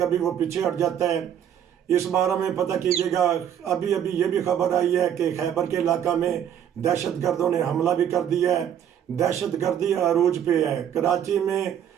वो पीछे हट जाता है। इस बारे में पता कीजिएगा। अभी अभी ये भी खबर आई है कि खैबर के इलाका में दहशत गर्दों ने हमला भी कर दिया है। दहशत गर्दी अरूज पे है। कराची में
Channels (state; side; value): quieter; left; 9.6 dB